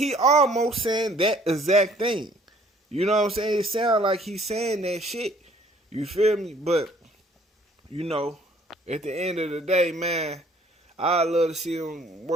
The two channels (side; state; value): both; normal; correlation 0.58